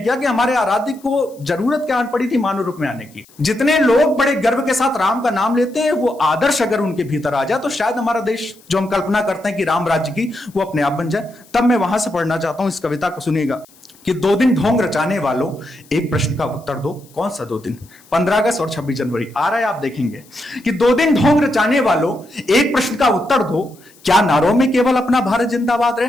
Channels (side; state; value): left; noise; hiss, 27 dB below the sound